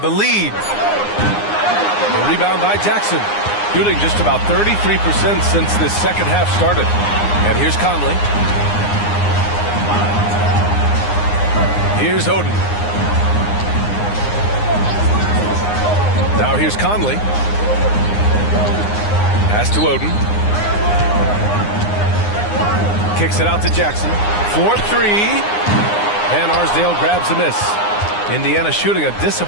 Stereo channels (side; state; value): right; late; 9.7 ms